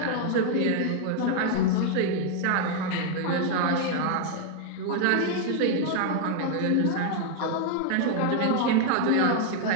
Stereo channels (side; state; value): both; different; correlation 0.00